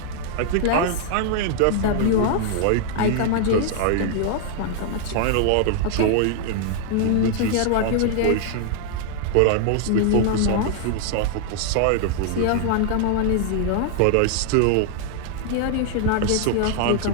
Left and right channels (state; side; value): different; both; correlation 0.00